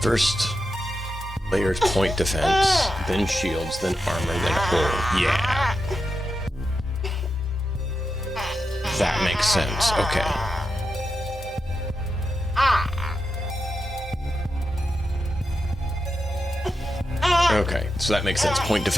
First layers point defense, then shields, then armor, then hull. Yeah. That makes sense. Okay. Okay, so that makes sense. Point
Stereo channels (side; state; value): both; normal; correlation 0.88